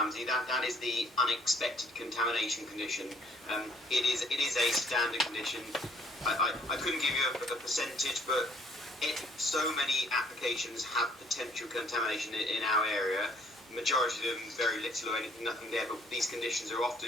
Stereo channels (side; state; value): both; normal; correlation 0.62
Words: that is the unexpected contamination condition. It is a standard condition. I couldn't give you a percentage, but so many applications have potential contamination in our area. Majority of them very little or nothing there, but these conditions are often